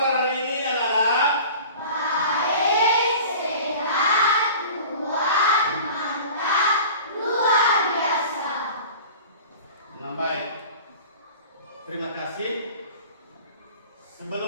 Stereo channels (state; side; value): inverted; both; correlation -0.40